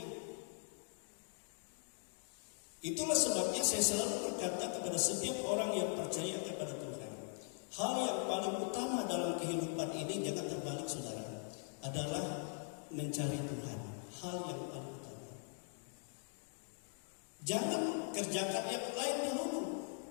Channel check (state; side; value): silent; right; 50 dB below the other